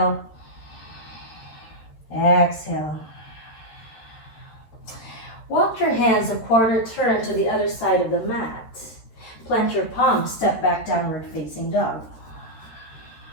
Exhale. Walk your hands a quarter turn to the other side of the mat. Plant your palms, step back, downward facing dog.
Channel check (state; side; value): late; right; 13 ms